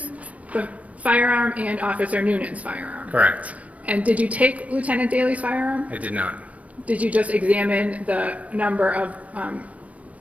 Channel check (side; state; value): left; late; 0.068 ms